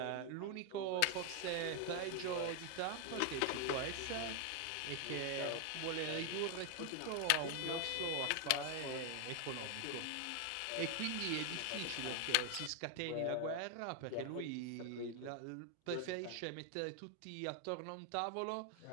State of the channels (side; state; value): both; different; correlation 0.01